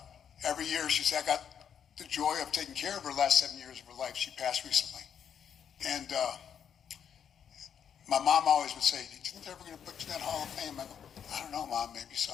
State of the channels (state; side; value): quieter; right; 8.2 dB